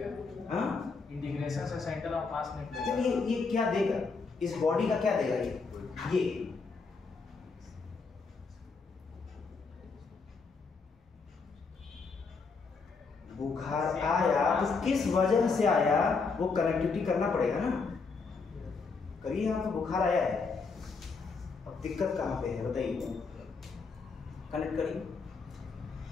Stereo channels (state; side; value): quieter; right; 4.6 dB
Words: हाँ इंटीग्रेशन से सेंटर ऑफ मास निकलेगा। ये क्या देगा, इस बॉडी का क्या देगा, ये बुखार आया तो किस वजह से आया, वो कनेक्टिविटी करना पड़ेगा ना। करिए, यहाँ तो बुखार आया है, अब दिक्कत कहाँ पे है बताइए, कनेक्ट करिए।